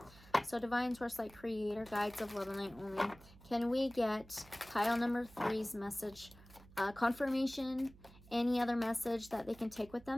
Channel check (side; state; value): right; noise; hum, 22 dB below the sound